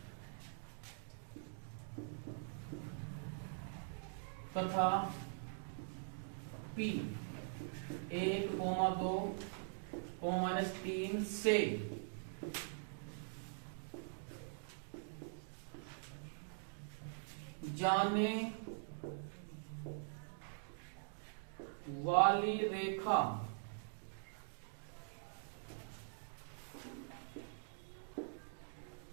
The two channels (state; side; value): silent; left; digital silence